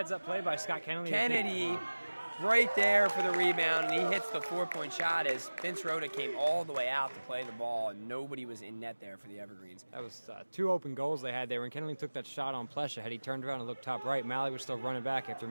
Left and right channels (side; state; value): both; inverted; correlation -1.00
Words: play by Scott Kennedy. Kennedy right there for the rebound, and he hits the 4-point shot as Vince Rhoda came all the way out to play the ball, and nobody was in net there for the Evergreens. That was 2 open goals they had there. When Kennedy took that shot on Plesha, had he turned around and looked top right, Malley was still running back after